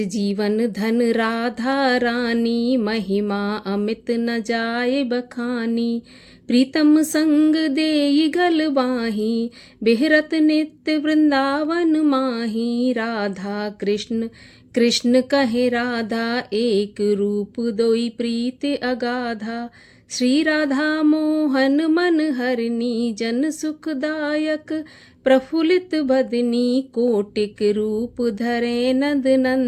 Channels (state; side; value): identical; both; correlation 1.00